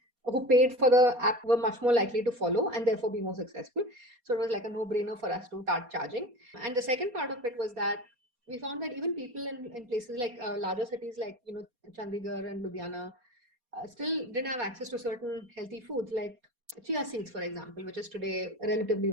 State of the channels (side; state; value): left; late; 4.2 ms